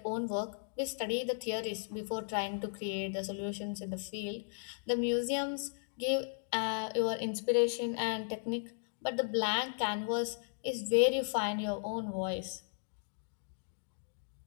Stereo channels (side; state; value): right; silent; digital silence